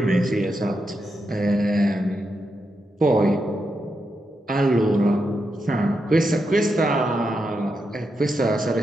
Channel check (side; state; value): both; normal; correlation 0.85